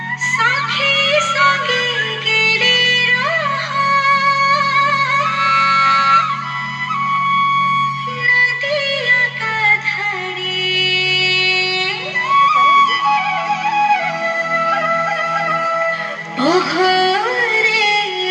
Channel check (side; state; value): both; identical; correlation 1.00